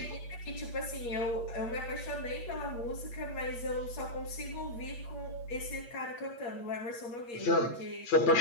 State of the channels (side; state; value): right; late; 8.4 ms